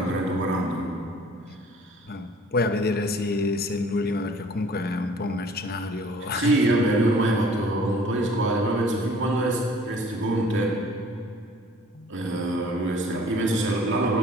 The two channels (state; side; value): normal; both; correlation 0.53